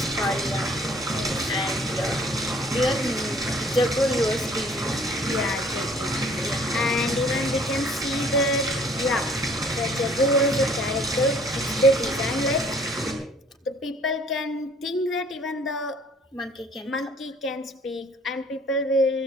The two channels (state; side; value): normal; both; correlation 0.56